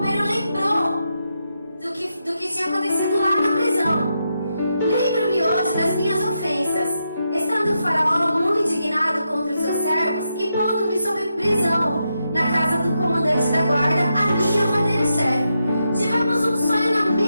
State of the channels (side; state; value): both; inverted; correlation -0.84